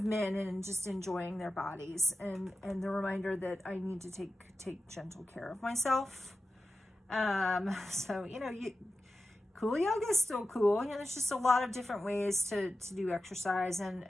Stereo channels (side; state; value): both; normal; correlation 0.93